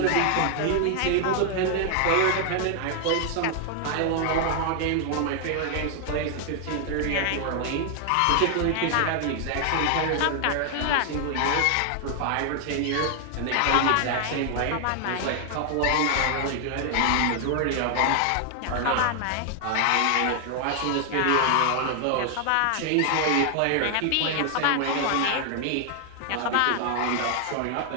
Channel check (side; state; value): both; different; correlation 0.00